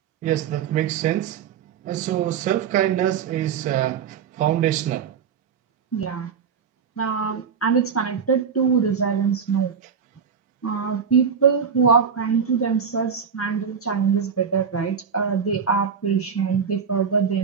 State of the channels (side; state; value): left; quieter; 6.9 dB